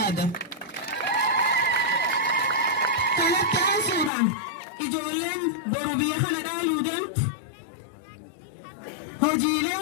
Kanatti aansuudhaan ijoolleen boru biyya kana dhaaluu deemtu hojiilee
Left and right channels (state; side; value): drops out; right; at 4.1 s